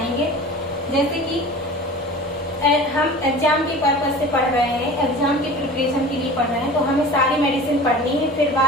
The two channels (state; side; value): normal; both; correlation 0.38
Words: जैसे कि हम एग्जाम के पर्पज से पढ़ रहे हैं, एग्जाम की प्रिपरेशन के लिए पढ़ रहे हैं, तो हमें सारी मेडिसिन पढ़नी है, फिर